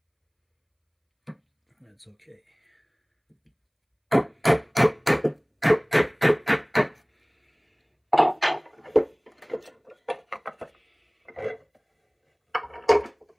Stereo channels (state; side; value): identical; both; correlation 1.00